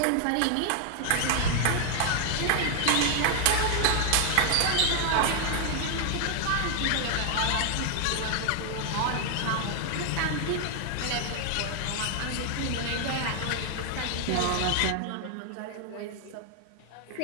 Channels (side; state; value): both; different; correlation 0.00